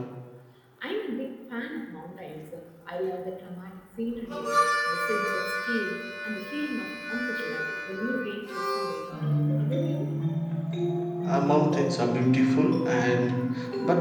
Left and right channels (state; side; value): identical; both; correlation 1.00